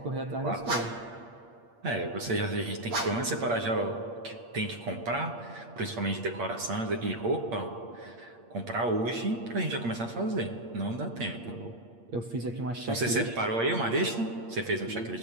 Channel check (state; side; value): late; left; 8.6 ms